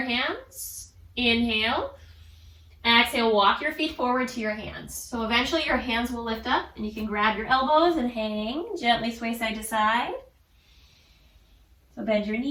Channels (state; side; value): identical; both; correlation 1.00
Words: hands. Inhale. Exhale, walk your feet forward to your hands. So eventually your hands will lift up and you can grab your elbows and hang. Gently sway side to side. So bend your